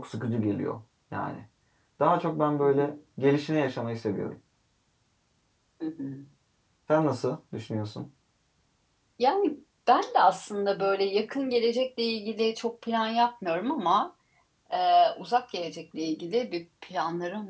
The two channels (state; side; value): identical; both; correlation 1.00